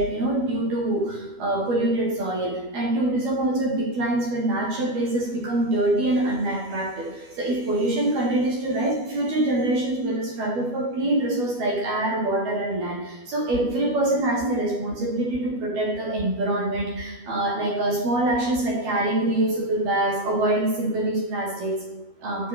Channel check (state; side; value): late; left; 12 ms